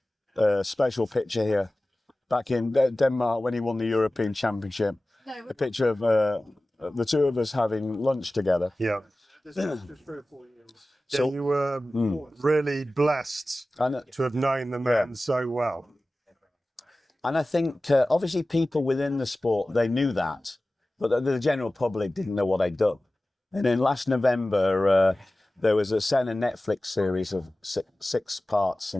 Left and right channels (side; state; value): both; normal; correlation 0.96